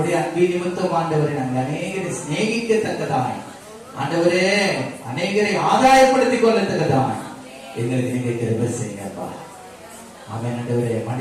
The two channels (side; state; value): both; identical; correlation 1.00